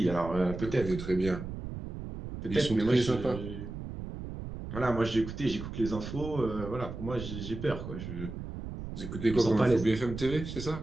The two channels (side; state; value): right; noise; rumble, 8 dB below the sound